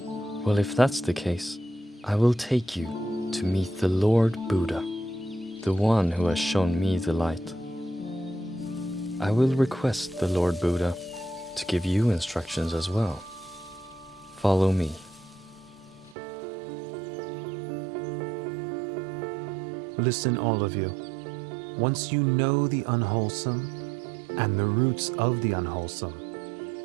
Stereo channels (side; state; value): left; drops out; at 16.2 s